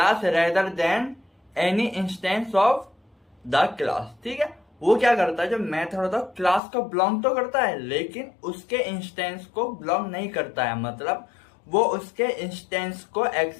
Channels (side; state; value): right; drops out; at 6.6 s